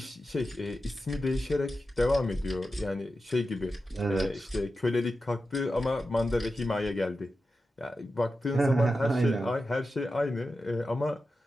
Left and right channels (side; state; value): both; normal; correlation 0.91